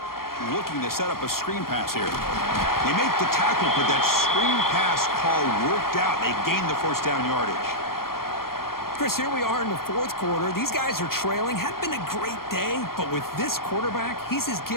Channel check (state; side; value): late; right; 0.92 ms